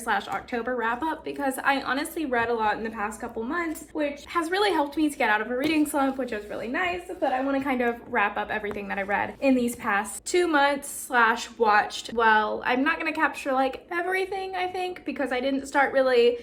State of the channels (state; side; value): identical; both; correlation 1.00